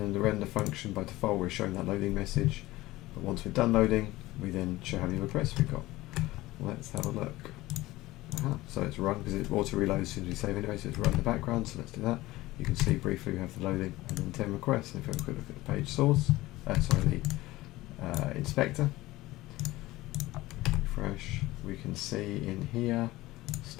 the render function, by default, we're showing that loading message. But once we're done loading, we then show how many requests we've got. Let's have a look. So it's run, because it auto reloads as soon as we save anyway. So it's run in the background. So let's do that. You can see briefly we have the loading and then 10 requests. And if we have a quick look at the page source, the inspector, refresh, we can see in here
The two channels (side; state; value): right; quieter; 18.3 dB